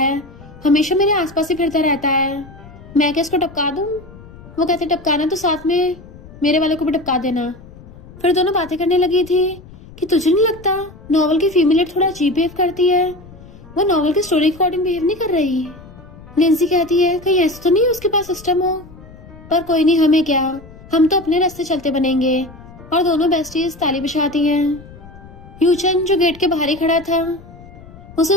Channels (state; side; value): noise; left; rumble, 20 dB below the sound